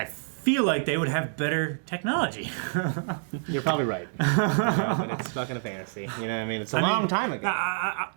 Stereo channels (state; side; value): silent; left; digital silence